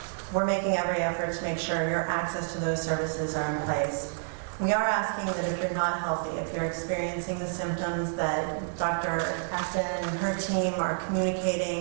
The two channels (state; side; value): silent; left; 59 dB below the other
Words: we're making every effort to make sure your access to those services are in place. We are asking that if you're not healthy, if you're experiencing the symptoms that Dr. Acton and her team are